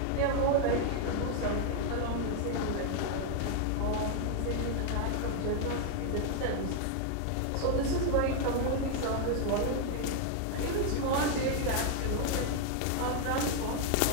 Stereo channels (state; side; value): different; both; correlation 0.00